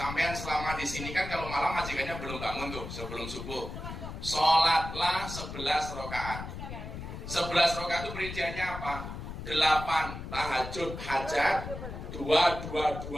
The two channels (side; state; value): left; noise; rumble, 9 dB below the sound